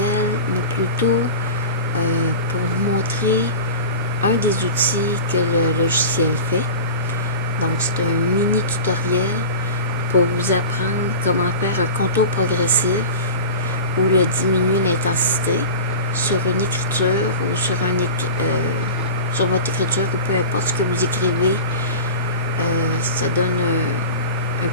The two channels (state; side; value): inverted; both; correlation -0.32